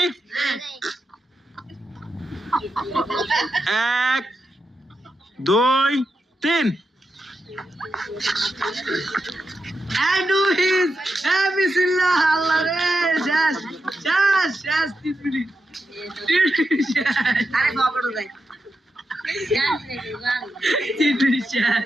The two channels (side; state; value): both; normal; correlation 0.87